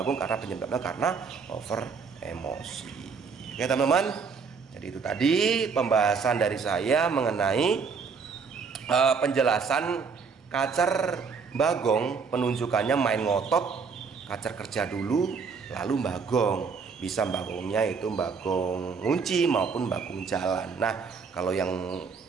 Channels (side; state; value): left; quieter; 5.4 dB